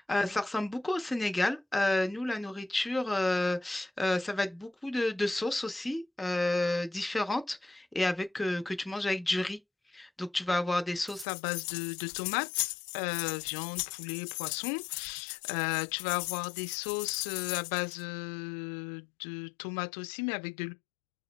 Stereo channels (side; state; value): right; drops out; at 11.2 s